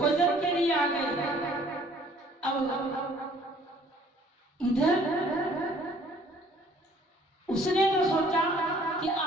के लिए आ गए। अब इधर उसने तो सोचा कि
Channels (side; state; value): both; normal; correlation 0.57